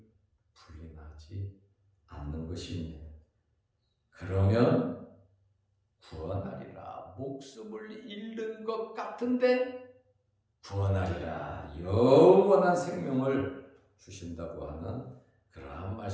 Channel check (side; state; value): both; identical; correlation 1.00